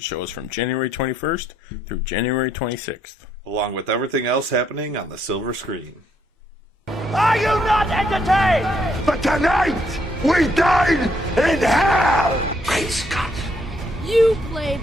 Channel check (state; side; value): normal; both; correlation 0.72